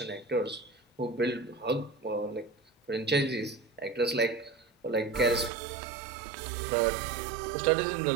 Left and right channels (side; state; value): left; drops out; at 5.5 s